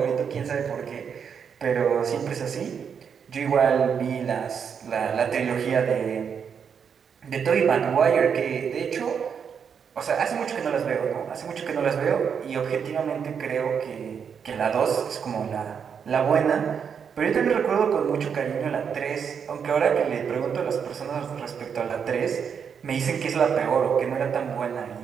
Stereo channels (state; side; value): quieter; left; 7.0 dB